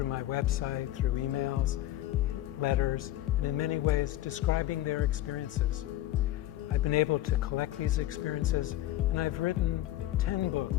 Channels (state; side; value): quieter; right; 14.5 dB